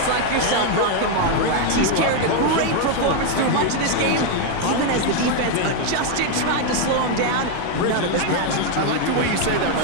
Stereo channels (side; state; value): both; different; correlation 0.01